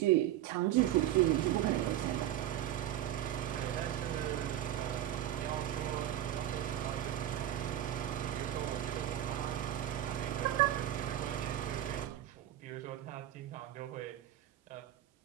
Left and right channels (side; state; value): left; quieter; 12.3 dB